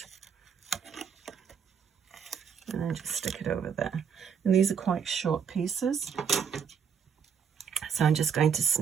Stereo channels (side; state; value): left; quieter; 7.1 dB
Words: And then just stick it over there. And these are quite short pieces. So I'm just going to